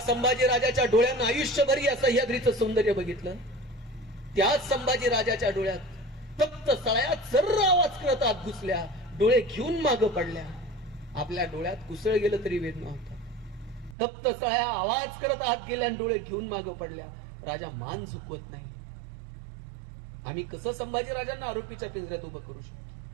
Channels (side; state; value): left; drops out; at 14.0 s